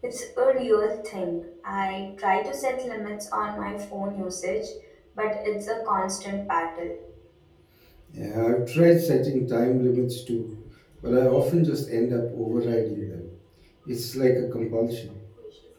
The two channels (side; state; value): both; identical; correlation 1.00